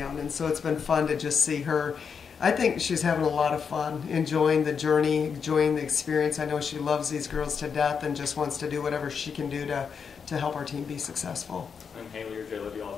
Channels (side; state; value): right; quieter; 6.3 dB